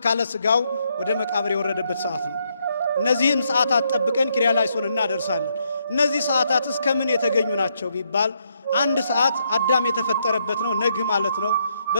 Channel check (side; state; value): both; inverted; correlation -0.76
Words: ሥጋው ወደ መቃብር የወረደበት ሰዓት ነው። እነዚህን ሰዓታት ጠብቀን ኪርያላይሶን እናደርሳለን። እነዚህ ሰዓታት እስከምን የተገኙ ናቸው ቢባል 1 ሰዓት አዳም የተፈጠረበት ነው፣ ነግ ማለት ነው።